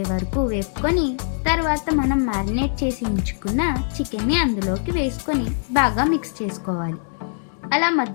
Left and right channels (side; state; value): right; silent; 61 dB below the other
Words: వరకు వేపుకొని తర్వాత మనం మ్యారినేట్ చేసి ఉంచుకున్న చికెన్ని అందులోకి వేసుకొని బాగా మిక్స్ చేసుకోవాలి. అలా